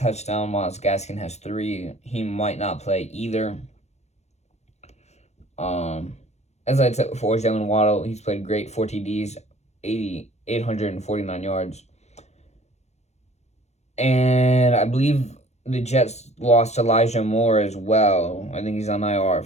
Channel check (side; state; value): right; late; 0.32 ms